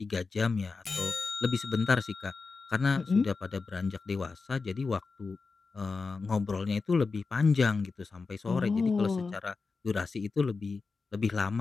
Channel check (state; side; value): quieter; right; 4.4 dB